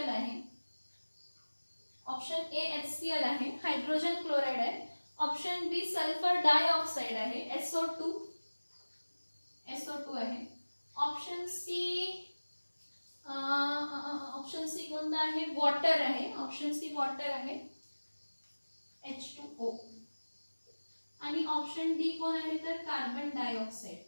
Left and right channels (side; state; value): both; inverted; correlation -1.00